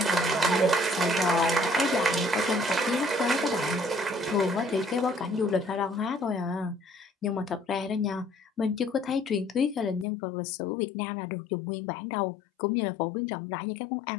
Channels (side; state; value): right; drops out; at 10.1 s